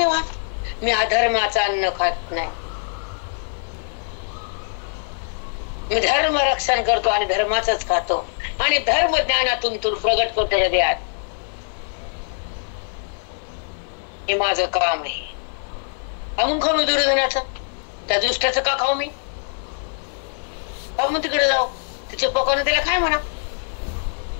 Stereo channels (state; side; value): silent; right; digital silence